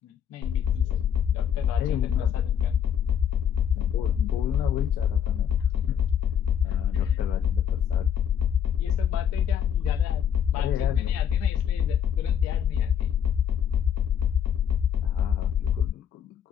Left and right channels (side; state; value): right; quieter; 8.8 dB